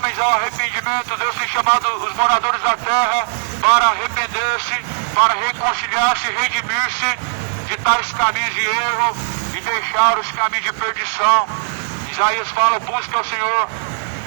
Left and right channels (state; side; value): silent; left; digital silence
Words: ao arrependimento. Deus tem chamado os moradores da terra para arrepender-se, para reconciliar-se, redimir-se de tais caminhos de erro e deixar os caminhos de perdição. Isaías fala, busca o Senhor